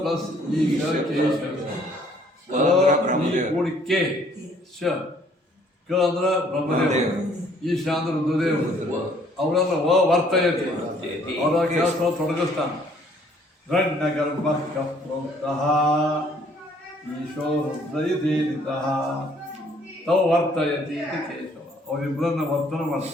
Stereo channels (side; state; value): both; normal; correlation 0.61